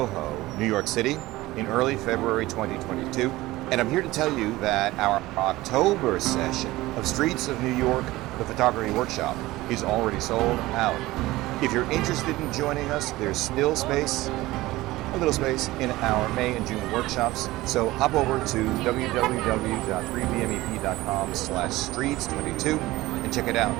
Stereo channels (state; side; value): quieter; left; 18.4 dB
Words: New York City, in early February 2022, and I'm here to tell you that our October session of Streets of New York, the photography workshop, is already sold out. If you're interested in joining us, there's still space, a little space, in our May and June workshops, so hop over to www.3bmep.com/streets22 and check it out.